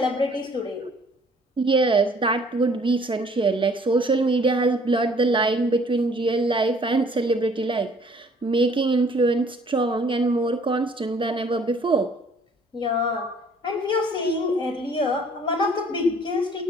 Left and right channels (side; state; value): both; normal; correlation 0.57